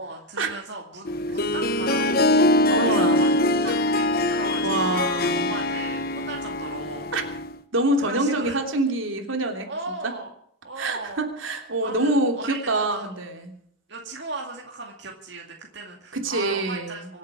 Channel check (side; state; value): both; normal; correlation 0.06